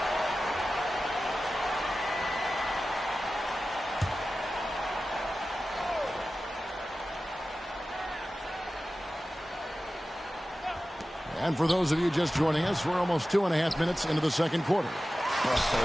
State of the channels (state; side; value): normal; both; correlation 0.95